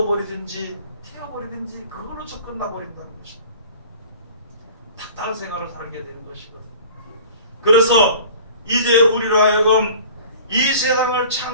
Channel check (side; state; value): both; inverted; correlation -0.43